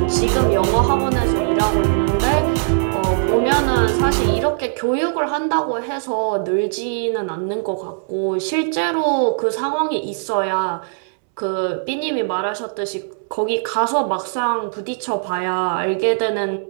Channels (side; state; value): left; silent; 66 dB below the other